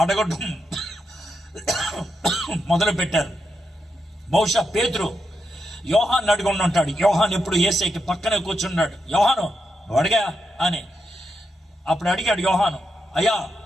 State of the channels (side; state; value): both; normal; correlation 0.84